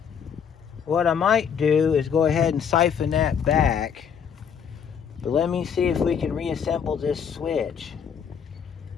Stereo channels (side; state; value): right; quieter; 7.4 dB